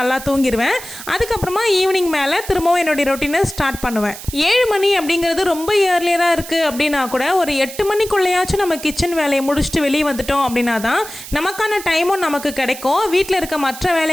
தூங்கிடுவேன். அதுக்கப்புறமா ஈவினிங் மேலே திரும்பவும் என்னுடைய ரொட்டீனை ஸ்டார்ட் பண்ணுவேன். 7 மணி அப்படிங்கிறது ரொம்ப இயர்லியராக இருக்குது அப்படின்னா கூட ஒரு 8 மணிக்குள்ளேயாச்சும் நம்ம கிச்சன் வேலையை முடிச்சுட்டு வெளியே வந்துட்டோம் அப்படின்னா தான் நமக்கான டைமும் நமக்கு கிடைக்கும். வீட்டில் இருக்க மற்ற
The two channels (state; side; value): noise; right; hiss, 13 dB below the sound